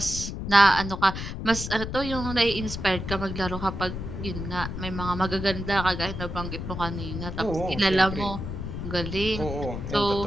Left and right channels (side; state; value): left; noise; rumble, 6 dB below the sound